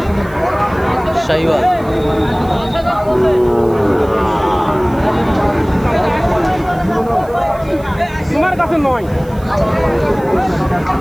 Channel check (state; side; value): noise; right; hiss, 25 dB below the sound